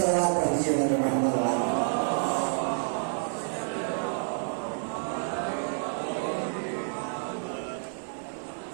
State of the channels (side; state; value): left; silent; digital silence